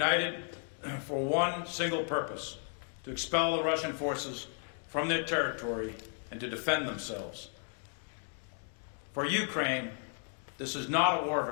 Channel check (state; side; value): silent; right; 55 dB below the other